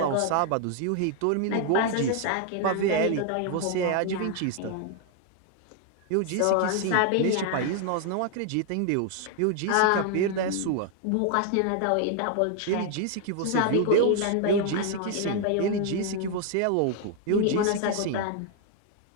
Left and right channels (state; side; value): different; both; correlation 0.00